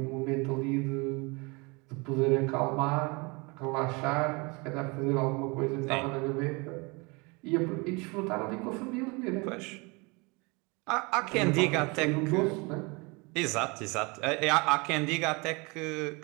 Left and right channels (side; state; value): left; quieter; 27.9 dB